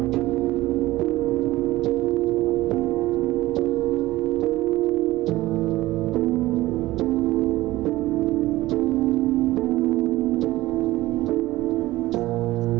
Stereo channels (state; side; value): quieter; left; 17.5 dB